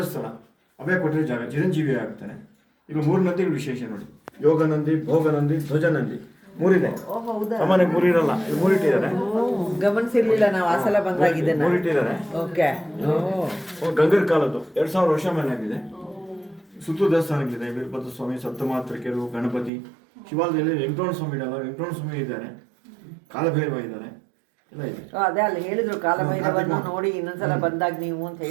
ಸ್ಥಳ ಅವೇ ಕೊಟ್ಟಿರೋ ಜಾಗ, ಚಿರಂಜೀವಿ ಆಗ್ತಾನೆ. ಈಗ 3 ನಂದಿಗಳು ವಿಶೇಷ ನೋಡಿ, ಯೋಗ ನಂದಿ, ಭೋಗ ನಂದಿ, ಧ್ವಜ ನಂದಿ, 3 ಇದೆ. ಸಾಮಾನ್ಯ 3 ಇರಲ್ಲ, 3 ಇಟ್ಟಿದ್ದಾರೆ. ಗಮನಿಸಿರ್ಲಿಲ್ಲ ನಾವು, ಆ ಸಲ ಬಂದಾಗಿದೆ 3 ಇಟ್ಟಿದ್ದಾರೆ. ಗಂಗರ ಕಾಲದ್ದು 2000 ವರ್ಷ ಮೇಲೆ ಆಗಿದೆ. ಸುತ್ತು ದೇವಸ್ಥಾನಗಳಿದೆ, ವೀರಭದ್ರ ಸ್ವಾಮಿ, ಸಪ್ತಮಾತೃಕೆಯರು, ಗಣಪತಿ, ಶಿವಾಲಯದಲ್ಲಿ ವೆಂಕಟರಮಣ ಸ್ವಾಮಿ ಇಡಲ್ಲ, ವೆಂಕಟರಮಣ ಸ್ವಾಮಿ ಇದ್ದಾರೆ, ಕಾಲಭೈರವ ಇದ್ದಾರೆ, ಎಲ್ಲ ಇದೆ. ಅದೇ ಅಲ್ಲಿ ಹೇಳಿದ್ರು ಕಾಲಭೈರವನ್ನು ನೋಡಿ ಇನ್ನೊಂದ್ಸಲ ಬಂದಾಗ ನೀವು ಅಂತ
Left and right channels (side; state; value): left; drops out; at 19.7 s